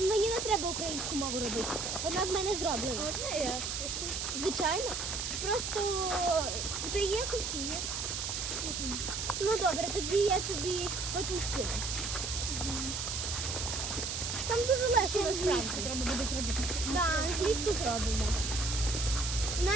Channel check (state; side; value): noise; right; hiss, 3 dB below the sound